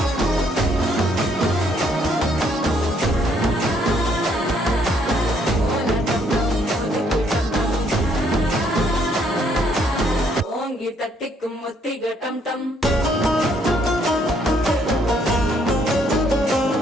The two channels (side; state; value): both; normal; correlation 0.68